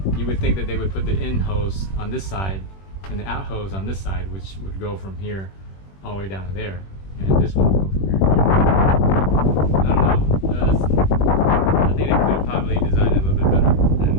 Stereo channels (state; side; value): late; right; 21 ms